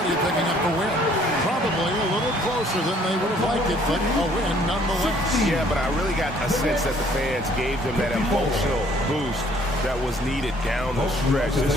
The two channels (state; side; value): normal; both; correlation 0.60